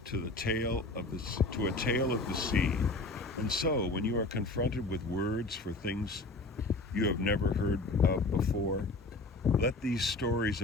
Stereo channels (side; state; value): right; quieter; 3.1 dB